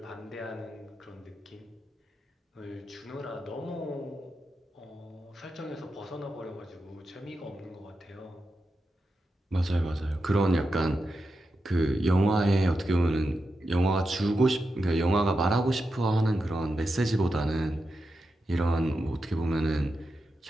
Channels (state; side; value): normal; both; correlation 0.88